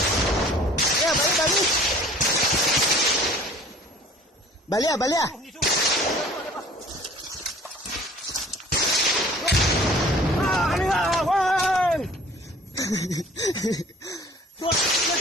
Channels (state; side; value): normal; both; correlation 0.50